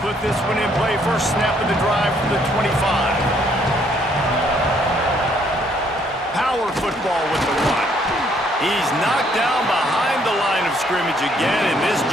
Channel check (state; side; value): normal; both; correlation 0.67